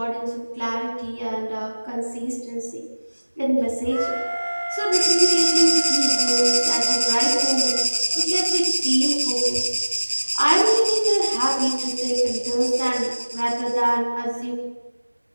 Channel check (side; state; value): both; inverted; correlation -1.00